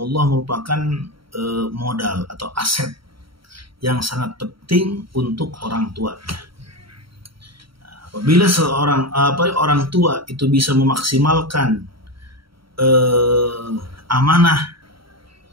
merupakan modal atau aset yang sangat penting untuk orang tuanya. Nah, apabila orang tua itu bisa memaksimalkan amanah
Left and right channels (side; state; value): left; late; 0.74 ms